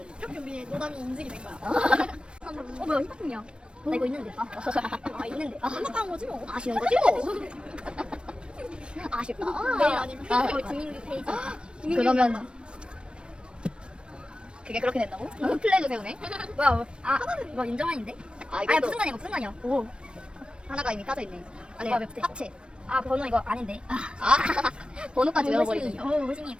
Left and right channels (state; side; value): late; left; 0.056 ms